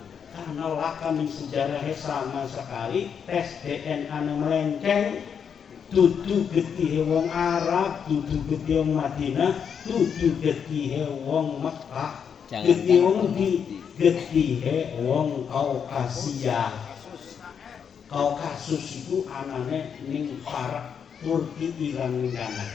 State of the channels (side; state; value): right; quieter; 7.3 dB